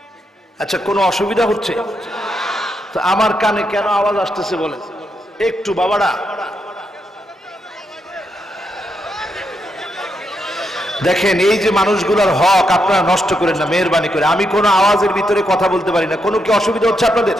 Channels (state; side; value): normal; both; correlation 0.81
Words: আচ্ছা, কোনো অসুবিধা হচ্ছে? তো আমার কানে কেন আওয়াজ আসতেছে বলেন একটু বাবারা? দেখেন এই যে মানুষগুলোর হক আপনারা নষ্ট করেন না মেহেরবানি করে। আমি কোনো আওয়াজের ভিতরে কথা বলতে পারি না, কোনো কি অসুবিধা হচ্ছে আপনাদের?